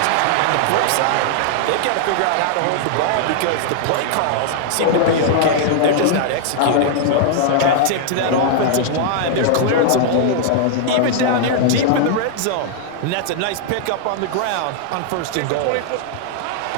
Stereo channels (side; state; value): both; different; correlation -0.01